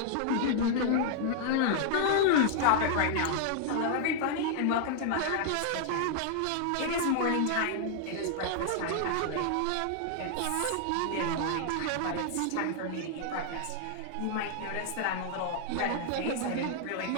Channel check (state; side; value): different; both; correlation -0.01